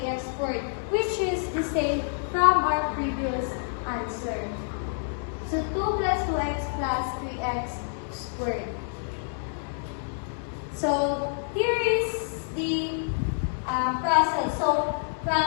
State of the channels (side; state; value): right; silent; digital silence